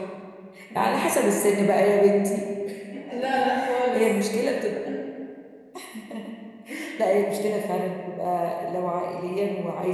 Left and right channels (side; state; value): both; identical; correlation 1.00